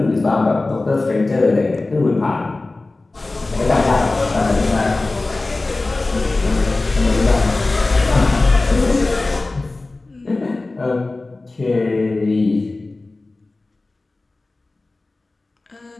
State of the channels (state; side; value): quieter; right; 3.2 dB